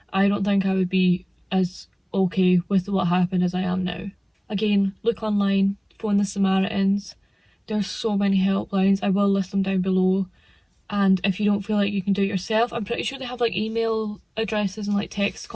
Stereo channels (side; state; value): both; identical; correlation 1.00